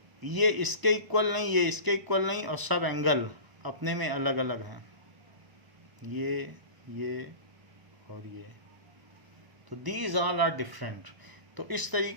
ये इसके इक्वल नहीं, ये इसके इक्वल नहीं, और सब एंगल अपने में अलग अलग हैं, ये और ये, तो दीज ऑल आर डिफरेंट। तो इस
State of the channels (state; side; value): late; left; 1.0 ms